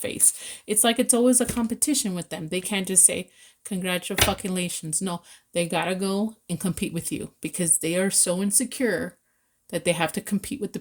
It's like it's always a competition with them. They can't just say, congratulations. No, they gotta go and compete with you because they are so insecure that they have to compete with the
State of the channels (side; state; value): both; identical; correlation 1.00